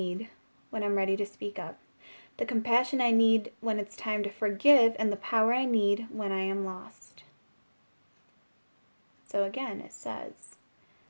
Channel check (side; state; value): both; inverted; correlation -1.00